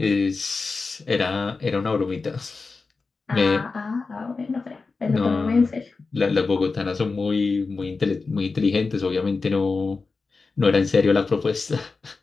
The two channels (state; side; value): quieter; right; 4.2 dB